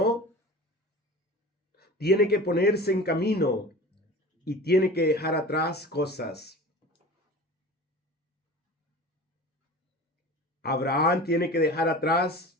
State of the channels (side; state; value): both; normal; correlation 0.37